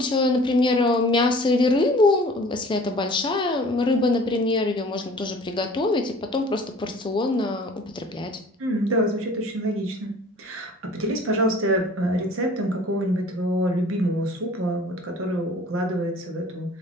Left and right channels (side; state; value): both; normal; correlation 0.47